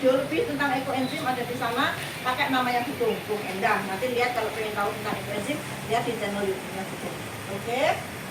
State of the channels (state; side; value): identical; both; correlation 1.00